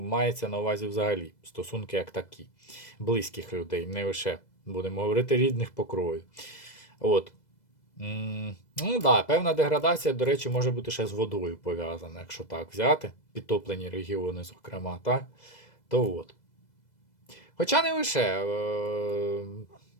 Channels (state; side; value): late; right; 2.0 ms